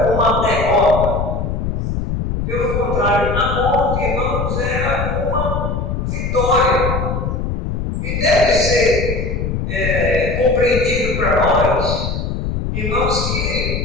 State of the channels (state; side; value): noise; left; rumble, 2 dB below the sound